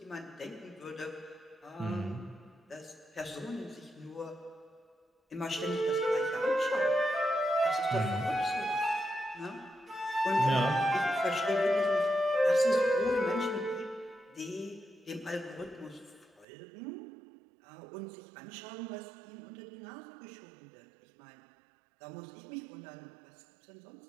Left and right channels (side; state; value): left; drops out; at 16.4 s